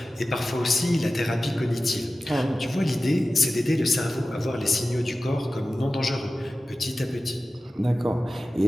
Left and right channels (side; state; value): both; normal; correlation 0.95